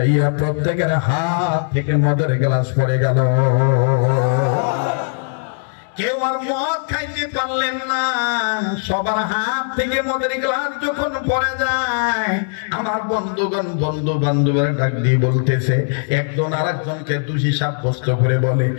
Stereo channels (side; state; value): right; silent; digital silence